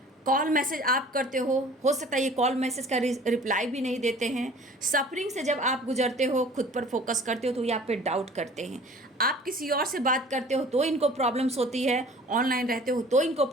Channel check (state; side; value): normal; both; correlation 0.48